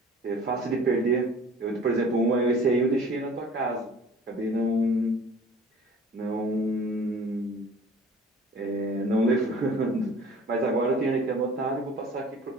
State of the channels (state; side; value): normal; both; correlation 0.47